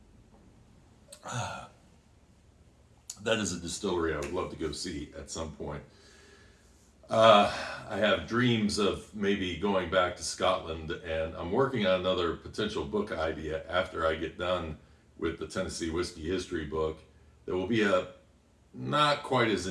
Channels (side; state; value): both; identical; correlation 1.00